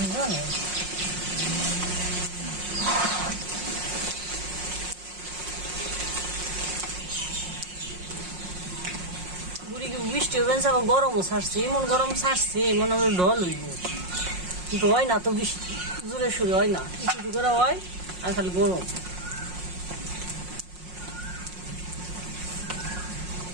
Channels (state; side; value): late; left; 5.5 ms